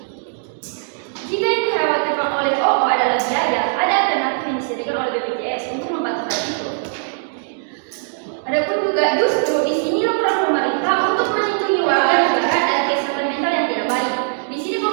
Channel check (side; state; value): left; silent; digital silence